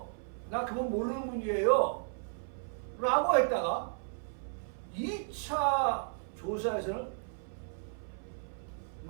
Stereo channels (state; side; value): silent; left; 55 dB below the other